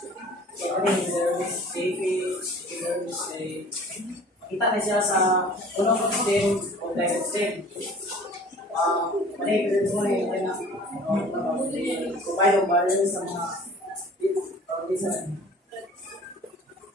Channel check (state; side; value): normal; both; correlation 0.47